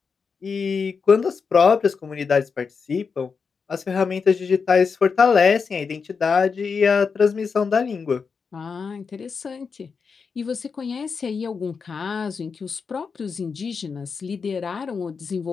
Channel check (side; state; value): right; quieter; 5.5 dB